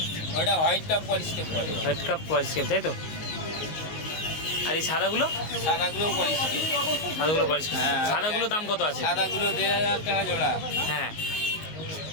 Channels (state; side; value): late; right; 19 ms